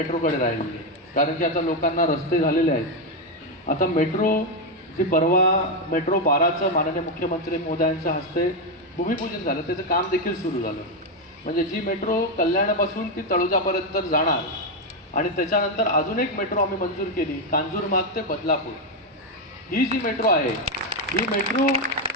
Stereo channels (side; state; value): both; normal; correlation 0.05